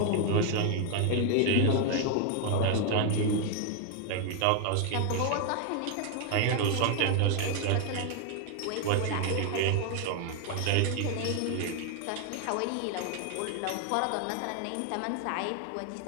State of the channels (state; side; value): different; both; correlation 0.00